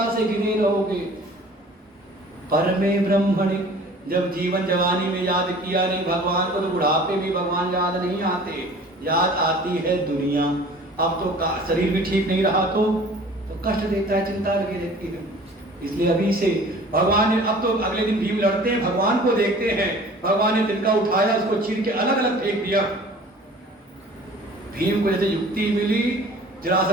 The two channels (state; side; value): normal; both; correlation 0.47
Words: से गिने रहोगे। परमे ब्रह्मणि, जब जीवन जवानी में याद किया नहीं भगवान को तो बुढ़ापे में भगवान याद नहीं आते, याद आती है दुनिया। अब तो शरीर भी ठीक नहीं रहा तो कष्ट देता है, चिंता लगी रहती है। इसलिए अभी से भगवान ने, अब तो अगले दिन भीम लड़ते हैं, भगवान को देखते हैं, भगवान ने तिनका उठाया, उसको चीर के अलग अलग फेंक दिया। भीम को जैसे युक्ति मिली,